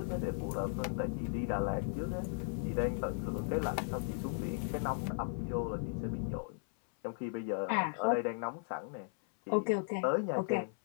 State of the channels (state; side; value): silent; right; 54 dB below the other